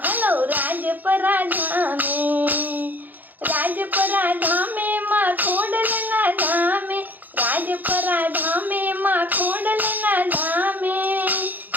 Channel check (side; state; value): left; late; 0.084 ms